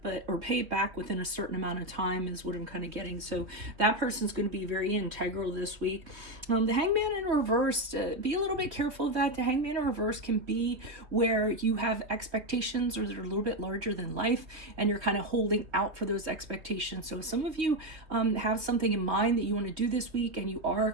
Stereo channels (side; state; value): left; late; 3.0 ms